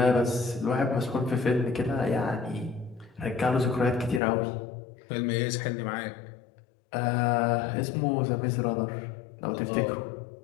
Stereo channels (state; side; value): drops out; right; at 4.2 s